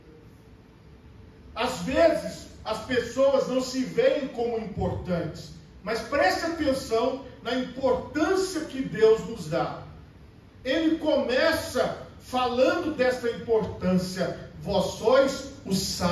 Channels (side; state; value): both; identical; correlation 1.00